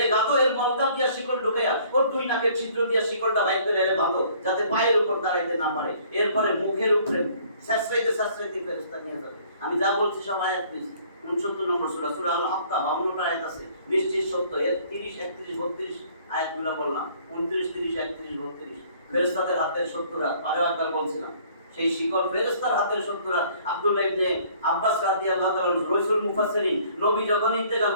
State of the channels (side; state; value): both; inverted; correlation -0.58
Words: গাতো, এর মলদার দিয়া শিকল ঢুকাইয়া ওর দুই নাকের ছিদ্র দিয়া শিকলটা বাইর করে এর বাঁধো, যাতে পায়ের উপর দাঁড়াইতে না পারে। এরপরে মুখের উপরে শাসরাইতে ফেরেশতা নিয়ে যাবে। আমি যা বলছি সব আয়াত পেয়েছি। 69 নম্বর সূরা, সূরা আল হাক্কা 52টা আয়াত আছে, নিশ্চিত সত্য। এর 30, 31, 32 আয়াতগুলো বললাম, 29, 30, 31, 32 ফেরেশতাদের হাতের 70 হাত। আরো একবার বলছিলাম সেই শিকল ফেরেশতার হাতের 70 হাত। আব্দুল্লাহ ইবনে আব্বাস রাদিয়াল্লাহু তাআলা রাসূল মুফাসসিরিন, নবী যখন ইন্তেকাল